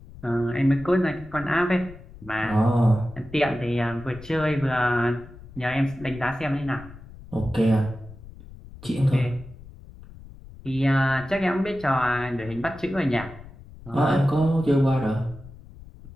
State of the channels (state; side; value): noise; left; rumble, 18 dB below the sound